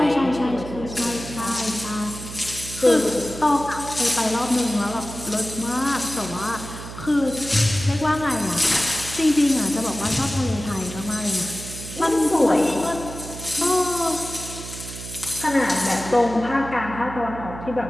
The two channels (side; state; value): right; noise; hum, 11 dB below the sound